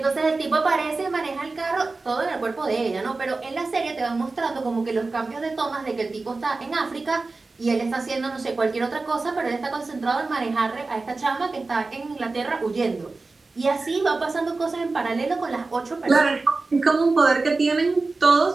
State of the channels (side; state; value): left; quieter; 3.7 dB